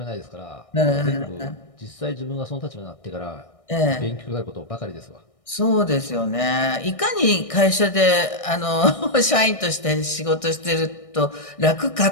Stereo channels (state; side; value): late; right; 1.6 ms